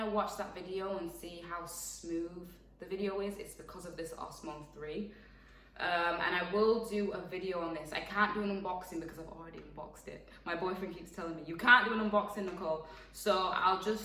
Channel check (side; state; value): both; identical; correlation 1.00